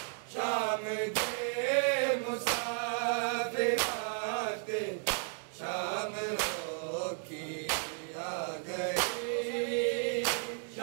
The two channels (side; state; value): left; silent; 55 dB below the other